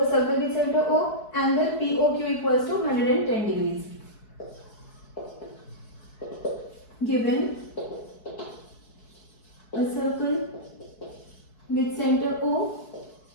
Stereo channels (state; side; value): late; right; 4.6 ms